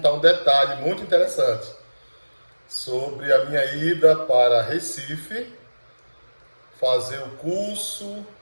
um detalhe muito interessante sobre a minha ida para Recife, fazer o curso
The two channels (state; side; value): inverted; both; correlation -1.00